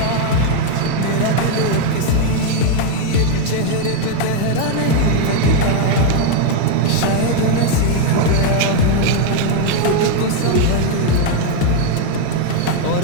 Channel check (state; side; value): different; both; correlation 0.01